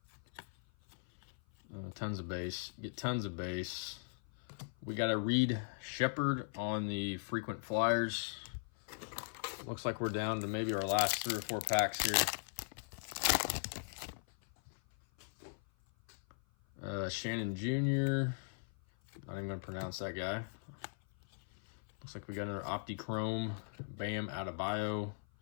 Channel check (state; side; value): silent; right; 52 dB below the other